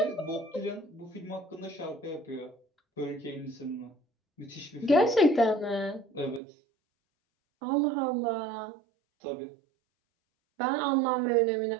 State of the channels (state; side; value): drops out; left; at 6.4 s